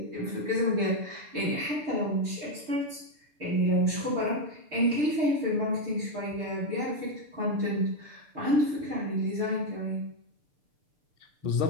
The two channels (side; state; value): left; late; 6.8 ms